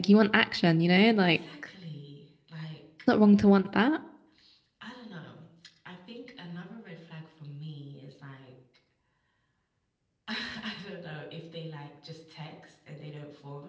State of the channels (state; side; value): identical; both; correlation 1.00